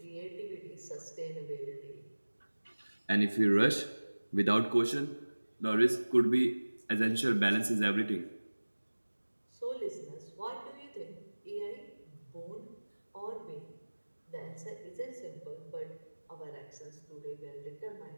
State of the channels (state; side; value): inverted; both; correlation -1.00